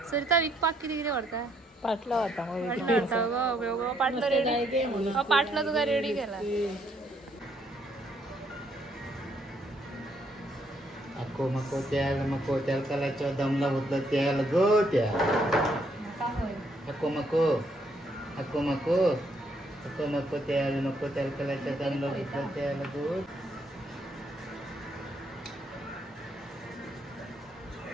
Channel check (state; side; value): normal; both; correlation 0.71